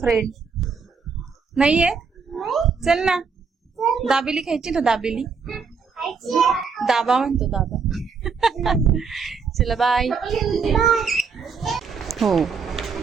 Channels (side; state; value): left; quieter; 5.5 dB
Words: नाहीये? चल ना, दाबेली खायची ना? दाबेली दाबा म्हणतो दाबा। चला बाय। हो